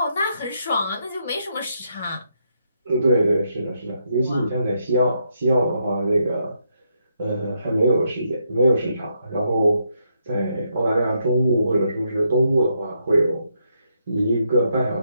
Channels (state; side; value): inverted; both; correlation -0.78